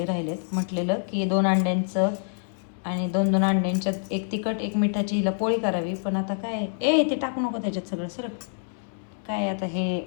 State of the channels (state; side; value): silent; right; 61 dB below the other